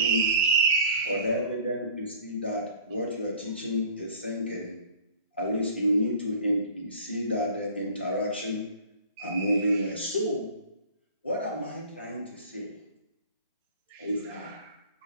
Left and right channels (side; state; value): both; inverted; correlation -0.47